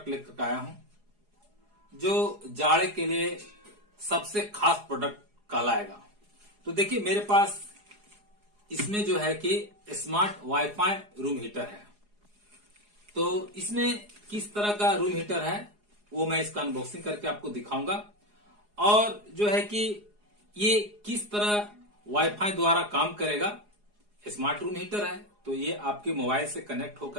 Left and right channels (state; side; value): late; left; 4.8 ms